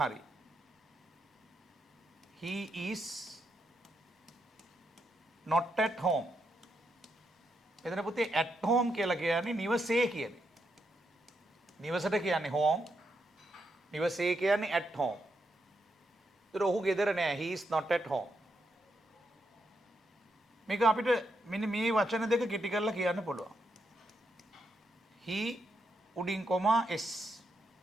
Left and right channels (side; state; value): both; normal; correlation 0.81